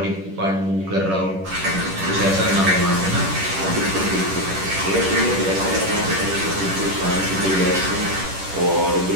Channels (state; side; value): late; left; 10 ms